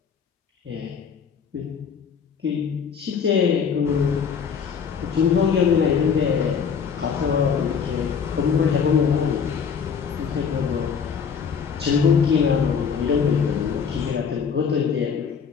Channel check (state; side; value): quieter; right; 6.6 dB